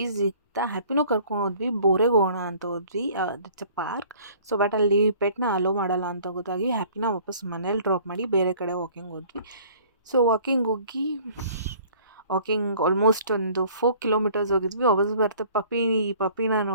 ಸಿಗ್ತಾ ಹ್ಯಾಪಿನೂ ಕರ್ಕೊಂಡು ಹೋದ್ವಿ. ಬೋರೆಗೆ ಹೋಗೋಣ ಅಂತ ಹೋದ್ವಿ. That's a park. So but ಅಲ್ಲಿ ಪೆಟ್ನ ಅಲೋ ಮಾಡಲ್ಲ ಅಂತ ಗೊತ್ತಾಗಿ ಹ್ಯಾಪಿನ ವಾಪಸ್ ಮನೇಲಿ ಡ್ರಾಪ್ ಮಾಡಿ ಬೇರೆ ಕಡೆ ವಾಕಿಂಗ್ ಹೋದ್ವಿ. ಸೊ ವಾಕಿಂಗ್ ಹೋಗಿ ಆಲ್ಮೋಸ್ಟ್ ಒಂದು 4 ಕಿಲೋಮೀಟರ್ಸ್ ಹೋಗಿದ್ವಿ. ವಾಪಸ್ ಬರ್ತಾ ಪಪ್ಪಿನ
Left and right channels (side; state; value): both; inverted; correlation -0.53